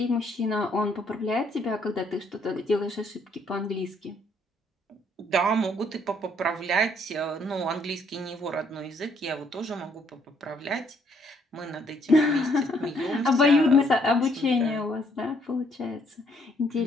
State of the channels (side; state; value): both; normal; correlation 0.68